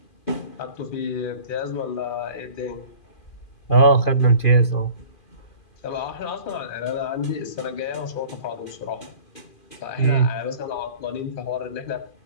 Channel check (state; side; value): late; right; 2.4 ms